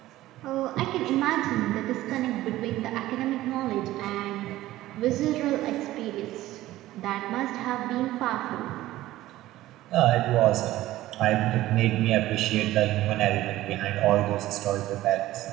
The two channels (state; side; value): quieter; left; 15.7 dB